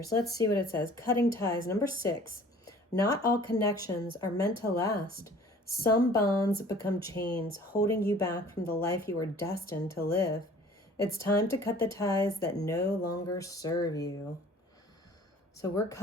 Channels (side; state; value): both; normal; correlation 0.49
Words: Let's see what it says. Cutting ties. Number 6. Not all connections are meant to last. Some bonds become chains, holding you back from the life you are destined to live. It's time to cut the ties that no longer serve you. So we're